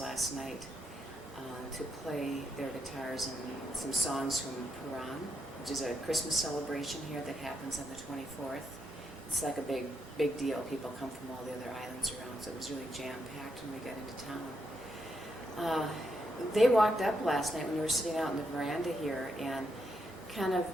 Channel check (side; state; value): both; normal; correlation 0.80